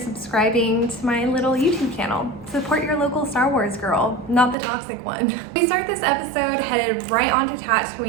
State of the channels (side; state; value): left; drops out; at 4.5 s